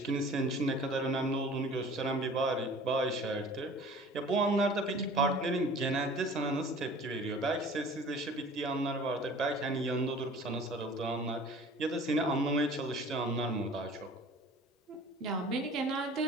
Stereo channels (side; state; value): both; normal; correlation 0.46